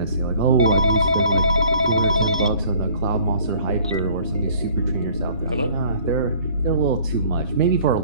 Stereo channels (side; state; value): both; inverted; correlation -0.54